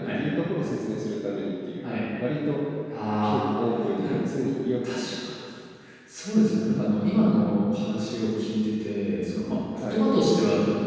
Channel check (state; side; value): identical; both; correlation 1.00